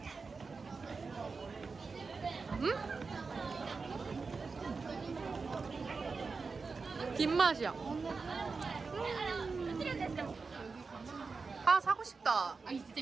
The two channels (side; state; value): left; quieter; 4.5 dB